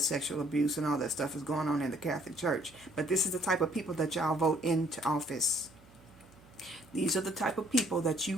sexual abuse and all that stuff is going on in the Catholic Church. But this is the type of people that y'all vote into office. These are the type of people that you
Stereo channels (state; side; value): noise; right; hum, 26 dB below the sound